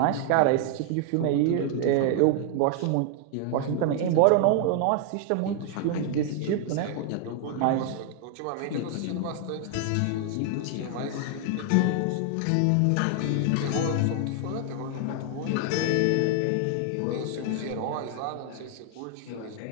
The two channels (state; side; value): different; both; correlation 0.00